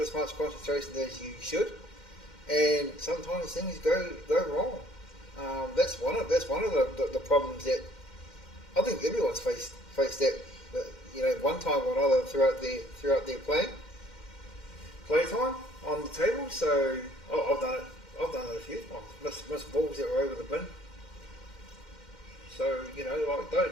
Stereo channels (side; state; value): right; late; 2.1 ms